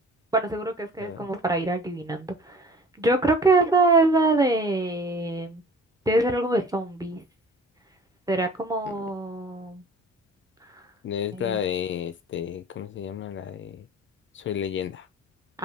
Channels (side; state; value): both; normal; correlation 0.45